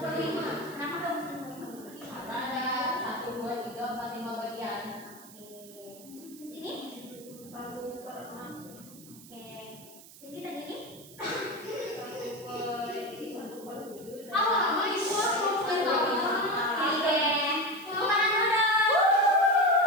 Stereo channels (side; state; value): right; noise; hiss, 19 dB below the sound